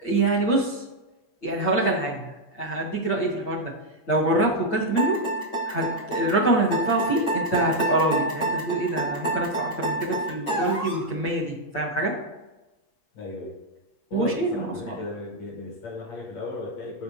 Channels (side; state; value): right; late; 8.5 ms